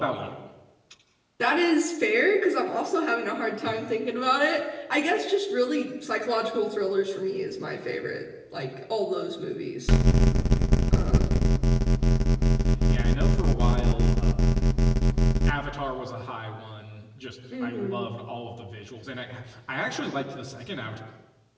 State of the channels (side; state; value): both; identical; correlation 1.00